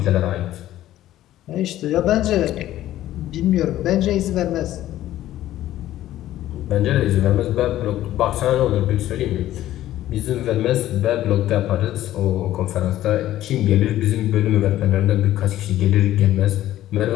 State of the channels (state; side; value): quieter; right; 13.8 dB